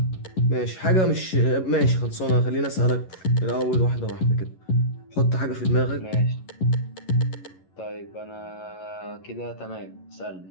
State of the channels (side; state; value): right; late; 11 ms